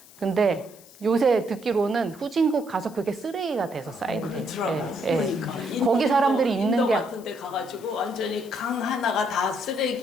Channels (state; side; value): noise; left; hiss, 23 dB below the sound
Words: 근데 요새 듣기로는 후진국 가서 그게 쓰레기가 돼서 쌓인대. 그러니까 거기 사람들이 입는 인도 게 같은 데 가가지고 완전히 강 하나가 다